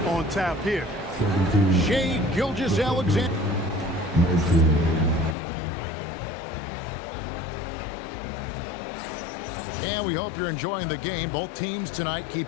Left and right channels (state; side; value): drops out; right; at 5.4 s